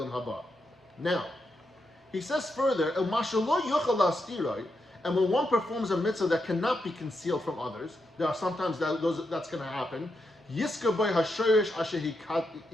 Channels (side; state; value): both; normal; correlation 0.84